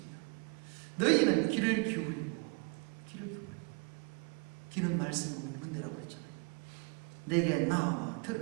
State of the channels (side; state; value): left; quieter; 32.0 dB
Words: 너희는 귀를 기울이고, 귀는 말씀을 먹는 데라고 했잖아요. 내게 나와